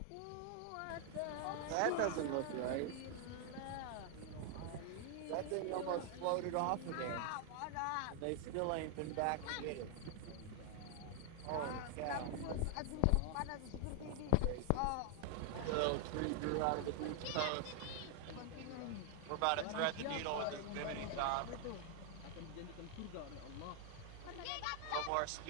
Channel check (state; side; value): different; both; correlation 0.00